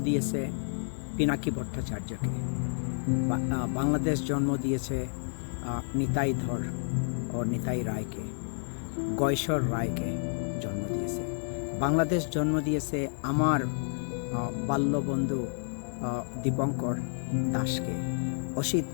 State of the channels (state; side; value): silent; right; 58 dB below the other